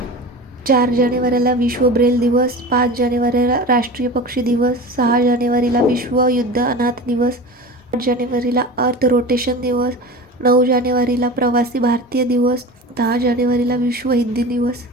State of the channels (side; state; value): both; normal; correlation 0.32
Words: 4 जानेवारीला विश्व ब्रेल दिवस, 5 जानेवारीला राष्ट्रीय पक्षी दिवस, 6 जानेवारीला विश्व युद्ध अनाथ दिवस, 8 जानेवारीला अर्थ रोटेशन दिवस, 9 जानेवारीला प्रवासी भारतीय दिवस, 10 जानेवारीला विश्व हिंदी दिवस.